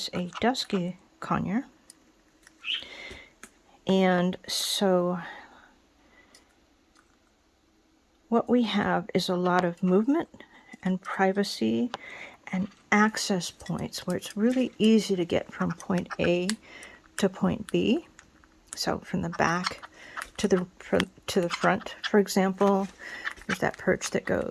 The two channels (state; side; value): identical; both; correlation 1.00